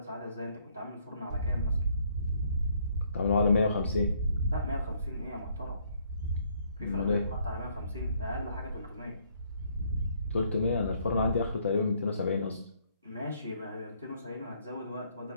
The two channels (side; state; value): both; inverted; correlation -0.67